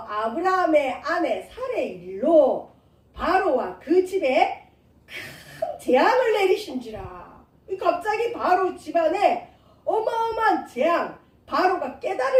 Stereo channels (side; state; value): both; identical; correlation 1.00